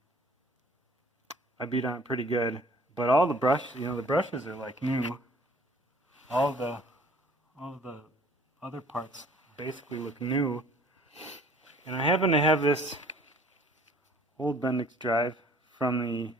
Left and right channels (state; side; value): normal; both; correlation 0.55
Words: beat on it pretty good, but all the the brushes are like new. All the other parts basically look new. And I happen to have this old Bendix drive